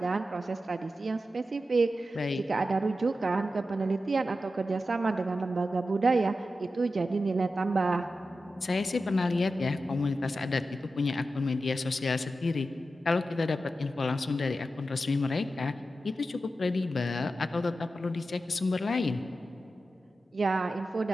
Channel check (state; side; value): normal; both; correlation 0.91